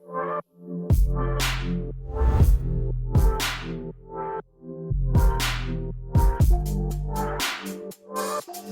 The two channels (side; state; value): both; identical; correlation 1.00